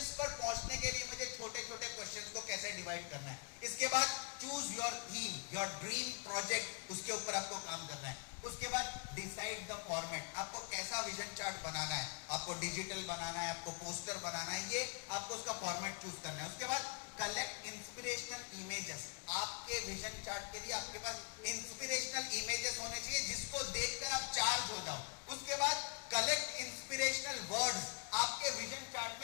पर पहुंचने के लिए मुझे छोटे छोटे क्वेश्चंस को कैसे डिवाइड करना है। इसके बाद choose your theme, your dream project, उसके ऊपर आपको काम करना है। उसके बाद डिसाइड द फॉर्मेट, आपको कैसा विजन चार्ट बनाना है, आपको डिजिटल बनाना है, आपको पोस्टर बनाना है, ये आपको उसका फॉर्मेट चूज करना है। उसके बाद कलेक्ट इंस्पिरेशनल इमेजेस। आपके विजन चार्ट के लिए आपके पास इंस्पिरेशनल इमेजेस होने चाहिए जिसको देखकर आप चार्ज हो जाओ। उसके बाद कलेक्ट इंस्पिरेशनल वर्ड्स। आपके विजन चार्ट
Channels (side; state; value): right; quieter; 35.2 dB